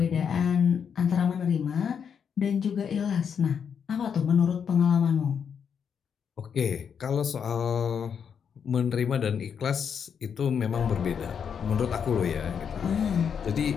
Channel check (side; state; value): right; quieter; 7.2 dB